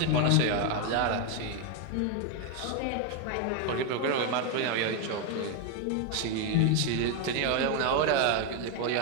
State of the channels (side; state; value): both; different; correlation 0.01